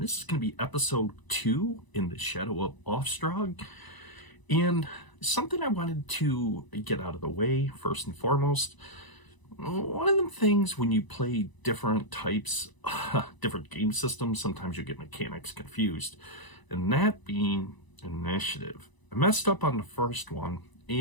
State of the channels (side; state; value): right; late; 1.0 ms